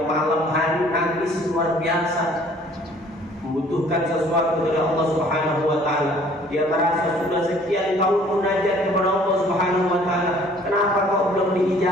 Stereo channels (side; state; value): both; normal; correlation 0.55